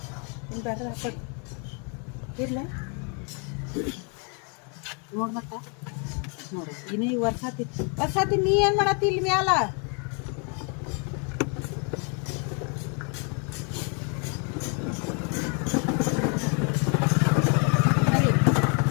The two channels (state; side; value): quieter; right; 37.3 dB